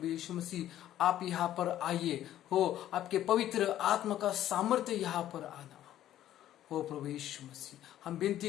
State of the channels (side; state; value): right; quieter; 12.4 dB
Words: यीशु मसीह आप यहाँ पर आइए हो, आपके पवित्र आत्मा का सामर्थ्य यहाँ पर आना हो प्रभु यीशु मसीह। हम विनती